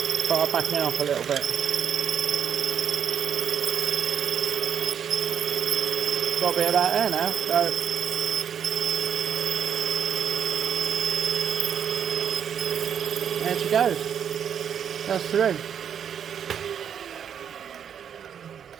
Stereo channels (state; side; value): quieter; left; 8.2 dB